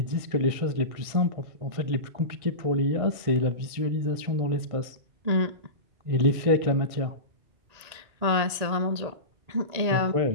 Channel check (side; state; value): left; late; 1.9 ms